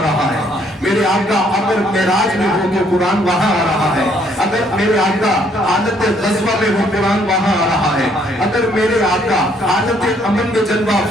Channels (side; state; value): both; normal; correlation 0.66